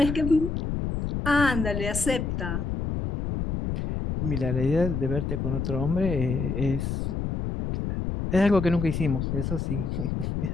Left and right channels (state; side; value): noise; left; rumble, 2 dB below the sound